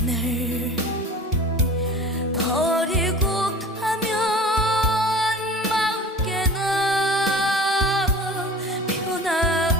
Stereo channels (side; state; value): both; normal; correlation 0.40